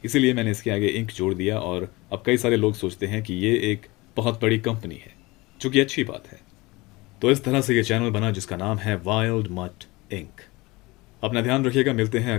इसीलिए मैंने इसके आगे इंक जोड़ दिया और अब कई सारे लोग सोचते हैं कि ये एक बहुत बड़ी कंपनी है, जो कि अच्छी बात है। तो इस तरह से ये चैनल बना जिसका नाम है वाइल्ड मट इंक। अपना ध्यान रखिएगा, मिलते हैं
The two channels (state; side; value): quieter; right; 22.5 dB